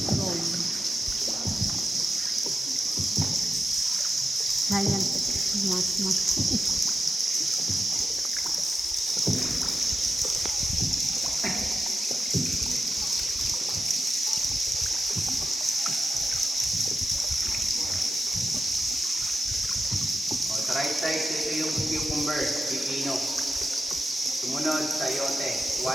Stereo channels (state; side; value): normal; both; correlation 0.89